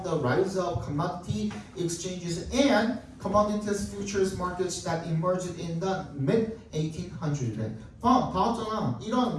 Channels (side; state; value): both; identical; correlation 1.00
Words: the rise of commodity exchanges and commodities futures markets that emerged in the mid-1800s. 다 왔잖아.